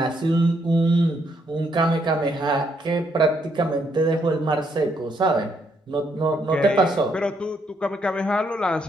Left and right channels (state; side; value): normal; both; correlation 0.74